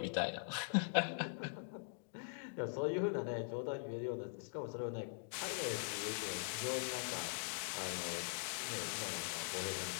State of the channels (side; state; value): right; silent; digital silence